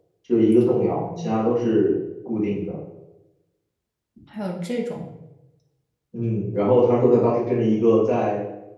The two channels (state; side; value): identical; both; correlation 1.00